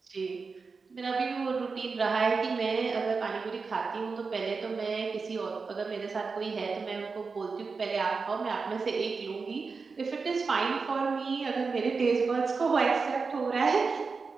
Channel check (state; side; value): quieter; left; 4.7 dB